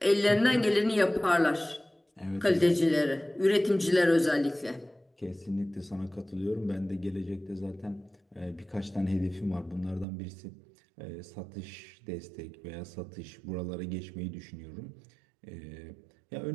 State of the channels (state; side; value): drops out; left; at 10.1 s